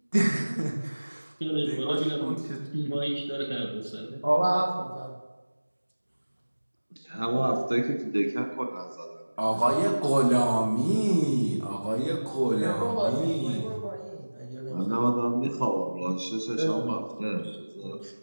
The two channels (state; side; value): inverted; both; correlation -1.00